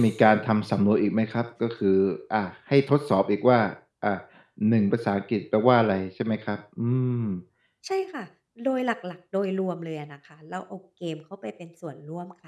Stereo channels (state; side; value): identical; both; correlation 1.00